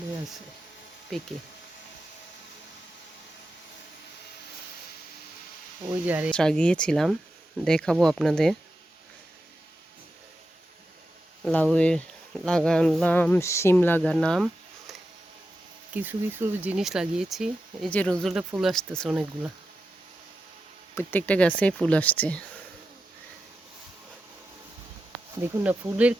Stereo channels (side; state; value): both; normal; correlation 0.90